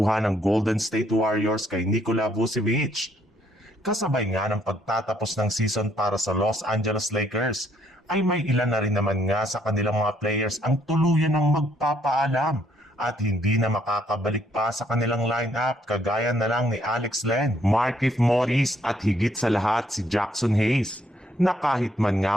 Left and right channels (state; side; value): normal; both; correlation 0.68